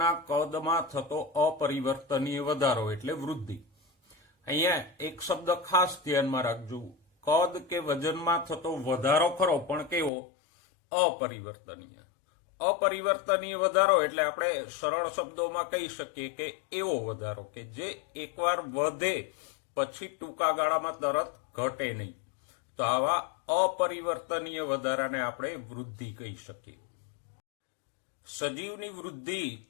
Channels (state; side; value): drops out; right; at 10.1 s